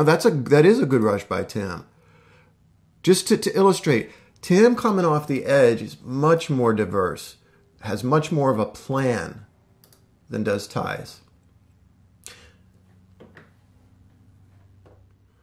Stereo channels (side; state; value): both; identical; correlation 1.00